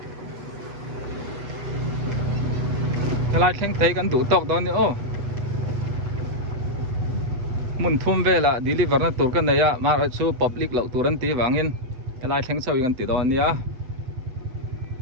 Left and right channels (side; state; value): left; late; 7.7 ms